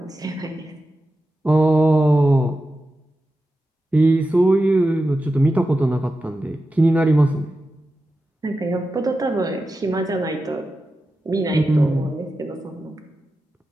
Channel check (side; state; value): both; normal; correlation 0.92